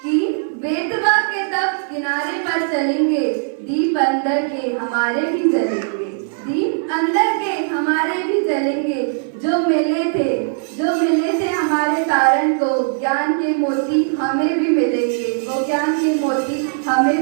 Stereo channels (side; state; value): left; silent; 60 dB below the other